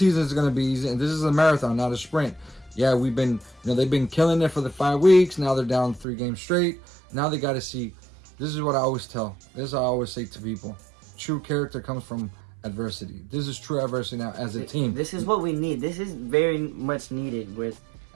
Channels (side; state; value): left; drops out; at 6.1 s